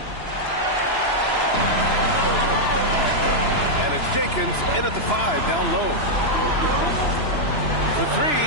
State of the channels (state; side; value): late; right; 2.9 ms